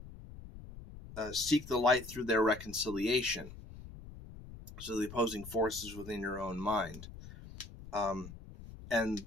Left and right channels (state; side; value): noise; left; rumble, 14 dB below the sound